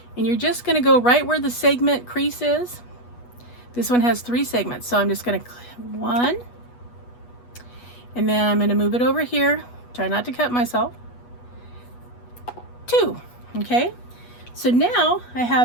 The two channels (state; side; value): late; right; 8.2 ms